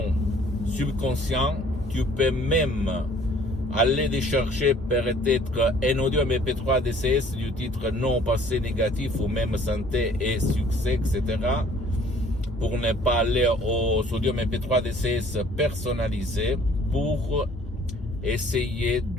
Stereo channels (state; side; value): normal; both; correlation 0.56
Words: subconscient, tu peux même aller les chercher peut-être un audio MP3 DCS du titre non passé négatif ou même santé et succès, etc. pour ne pas aller aux audios MP3 DCS personnalisés pour essayer